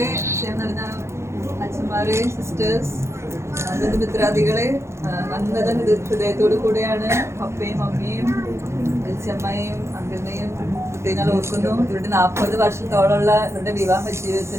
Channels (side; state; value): left; late; 0.13 ms